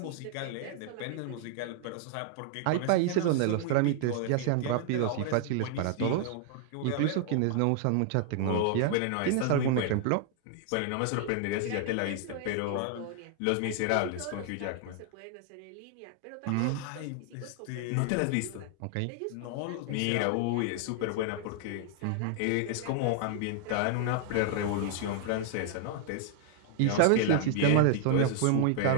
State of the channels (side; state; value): both; different; correlation 0.00